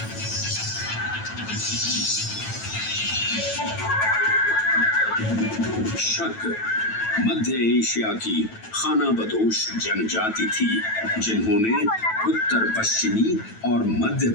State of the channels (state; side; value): late; right; 9.1 ms